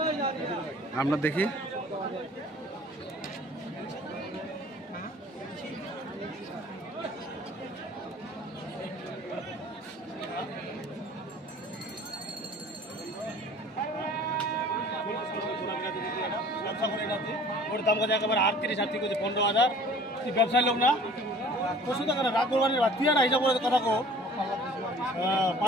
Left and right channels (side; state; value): both; normal; correlation 0.48